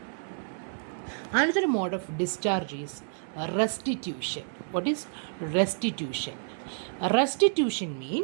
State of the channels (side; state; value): left; silent; 58 dB below the other